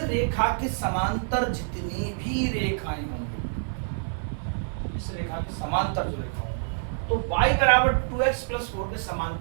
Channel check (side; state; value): left; silent; 56 dB below the other